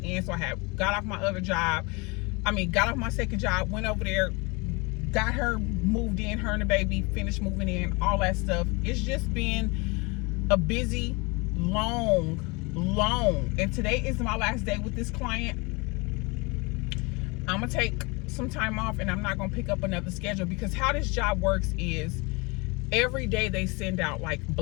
in. So I had got off my other job. Got off my second job, went over there, got her moved in, her and the baby, finished moving in, all that stuff. It's just been a busy, long. And today is my last day with this client. I'm gonna take some time off and I'm not gonna pick up another schedule, because how this job works is every day they send out like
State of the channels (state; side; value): quieter; right; 27.6 dB